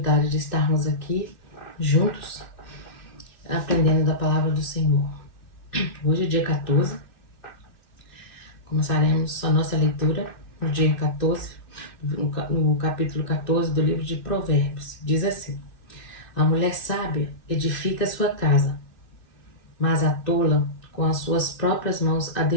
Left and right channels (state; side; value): late; right; 2.6 ms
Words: de estarmos aqui juntos, aprendendo da palavra do Senhor. Hoje é dia 14, começaremos a nossa leitura no dia 14, no capítulo 14 do livro de Provérbios. Diz assim: a mulher sábia edifica sua casa, mas a tola com as suas próprias mãos a